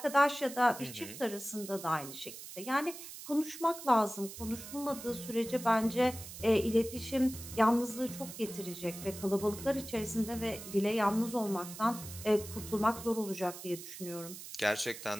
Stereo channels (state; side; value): noise; right; hiss, 12 dB below the sound